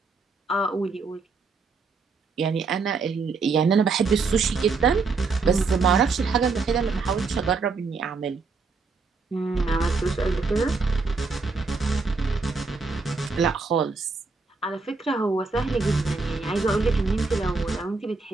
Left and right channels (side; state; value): left; quieter; 4.3 dB